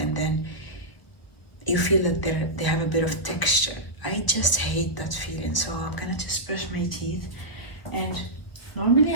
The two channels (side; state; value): right; late; 1.2 ms